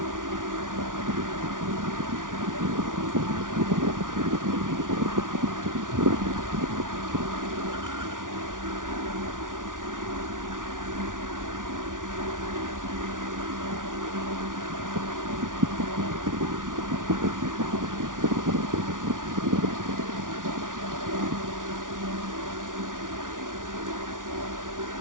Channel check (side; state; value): left; late; 0.88 ms